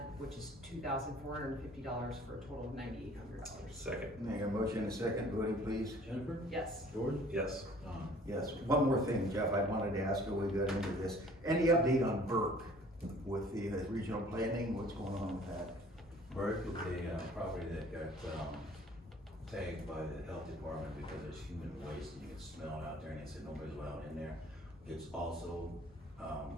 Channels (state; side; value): normal; both; correlation 0.53